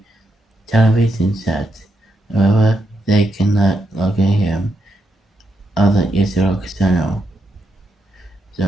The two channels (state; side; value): normal; both; correlation 0.81